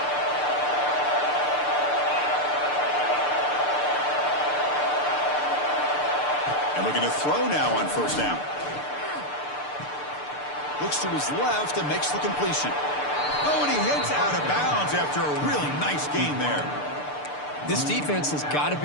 And looking to throw now on first down. Looks to his left and makes the completion. Oh, and he hits out of bounds after a really nice gain there. This defense has got to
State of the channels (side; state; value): right; late; 6.8 ms